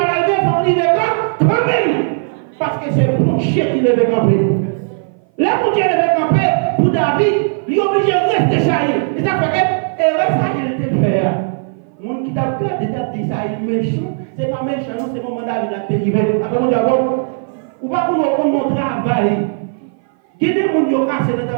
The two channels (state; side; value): silent; left; 57 dB below the other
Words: il faut arriver quand même. Parce que c'est pour chien qui devait camper. Là, pour Dieu devait camper, pour David, il est obligé de rester chaillé. Et ça fait que, et ça, il était fait. Le monde qui t'a gardé, t'a dit ça, il est méchant. C'est pas méchant, c'est mon mandat, il a dérivé. Après, on dit, ou pas pour mon travail. Qui est des gens qui ont cassé le